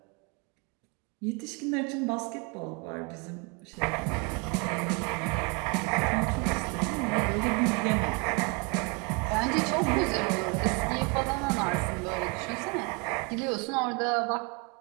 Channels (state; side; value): quieter; left; 32.1 dB